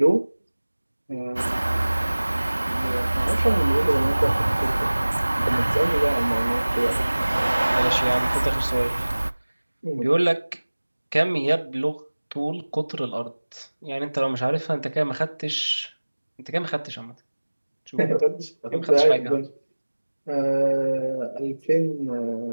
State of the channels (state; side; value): inverted; both; correlation -1.00